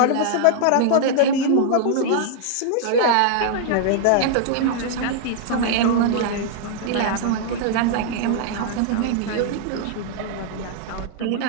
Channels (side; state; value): both; different; correlation -0.01